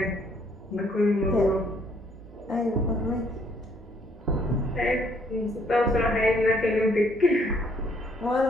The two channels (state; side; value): normal; both; correlation 0.66